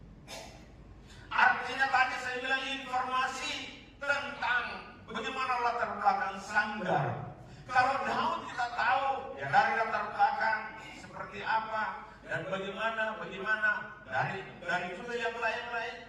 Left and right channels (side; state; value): both; identical; correlation 1.00